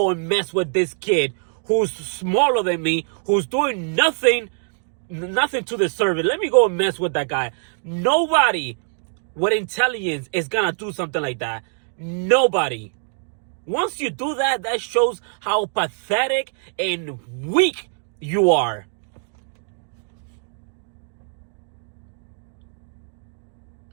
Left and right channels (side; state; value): left; silent; 63 dB below the other